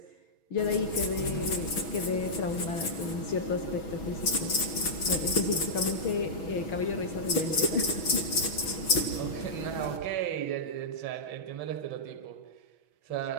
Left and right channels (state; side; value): late; right; 6.2 ms